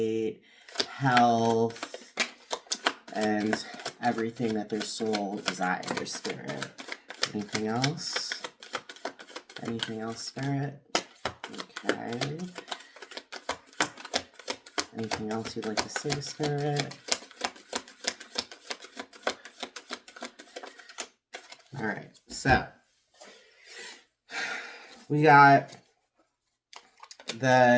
health, and everything that their soul desires, Spirit? Anything else? Anything else, Spirit? Okay. Anything else you'd like to say, Spirit? All right, so we got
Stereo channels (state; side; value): identical; both; correlation 1.00